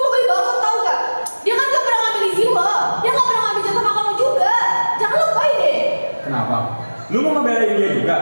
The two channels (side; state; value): both; inverted; correlation -1.00